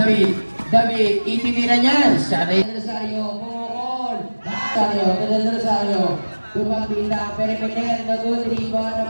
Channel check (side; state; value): both; inverted; correlation -1.00